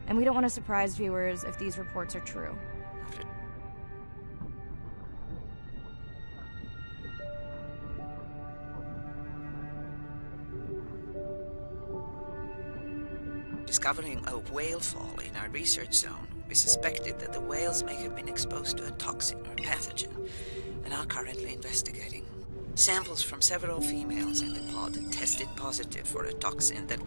and we don't want to surprise viewers if these reports are true. Discovering a whale fall in our research zone, we suspected that the whales may have been exposed to a toxin or pathogen, and are currently investigating. Samples from several females in the pod tested positive for a toxin that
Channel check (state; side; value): inverted; both; correlation -1.00